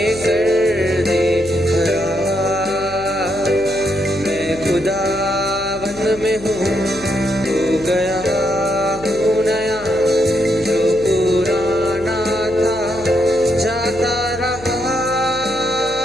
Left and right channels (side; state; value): left; noise; hum, 17 dB below the sound